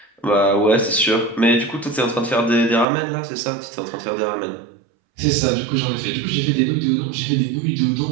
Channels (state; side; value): drops out; left; at 2.9 s